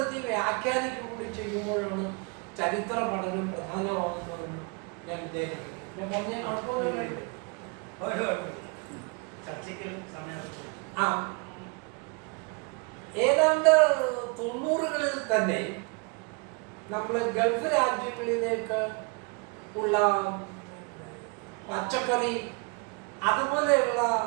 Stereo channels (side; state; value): left; quieter; 32.5 dB